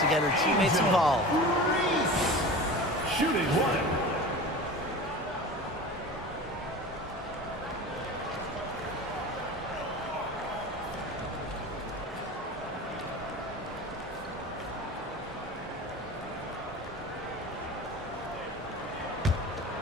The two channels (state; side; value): normal; both; correlation 0.34